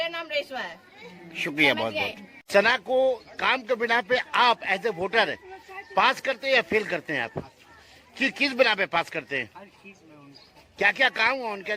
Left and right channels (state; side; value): identical; both; correlation 1.00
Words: नाम रेशमा है। शुक्रिया बहुत बहुत। सना को काम के बिना पे आप एज ए वोटर पास करते हैं या फेल करते हैं? आप किस बिना पे पास करते हैं? क्या क्या काम हुआ उनके